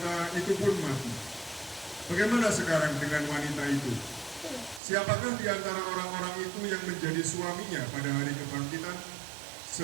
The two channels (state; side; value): drops out; left; at 4.8 s